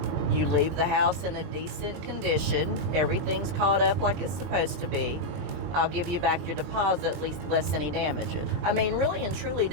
You leave the house in a decent condition. Everything's caught up like it's supposed to be. I'll give you back your deposit, at least less any damages. I mean, really and truly,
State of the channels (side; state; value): left; late; 22 ms